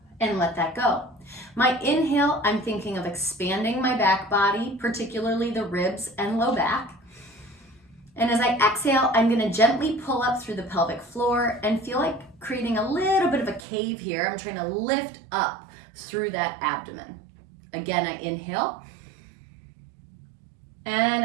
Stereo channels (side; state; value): left; drops out; at 13.6 s